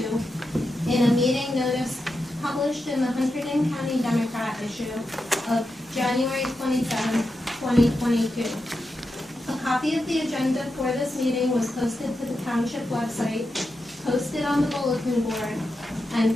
in a meeting notice published in the Hunterdon County Democrat issue of January 27, 2022. A copy of the agenda for this meeting was posted to the township website, posted on the bulletin board, and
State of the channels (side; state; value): both; normal; correlation 0.88